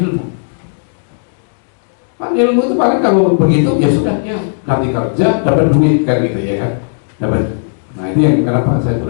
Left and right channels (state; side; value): silent; right; digital silence